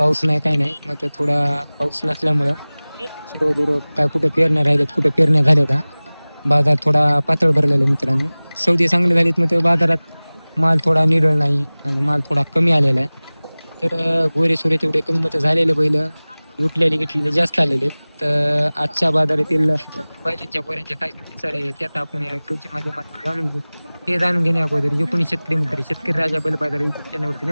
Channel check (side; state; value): both; inverted; correlation -1.00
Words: नाही काही नाही, मग थोडा पाऊस नसल्यामुळं दूर काय कुठे पेरण्या राहिल्यात, कुठे पेरण्या झाल्या का बाजार थोडा पातळ भरलेला मित्रांनो. सौदे चांगले झालेत, मग बाजारात माल थोडा निडळ नाही आणि माल थोडा कमी आलेला आहे. तर गोरे सोरे तेवढे कमी मतं झालेले बैल उठलेले घेतलेले जास्त आलेले. तर आजच्या बाजारातील बैलांच्या गोऱ्यांच्या काय सर आहे त्यात आपण या कृषी माध्यमातून जाणून घेऊ. ते जाणून घेण्या अगोदर जे कोणी शेतकरी मित्र शेतकरी राजा बैल बाजार युट्यूब चॅनलवरती